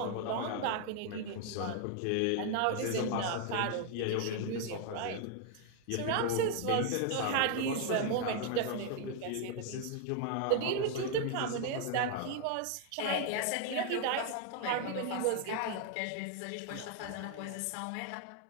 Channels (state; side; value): different; both; correlation 0.00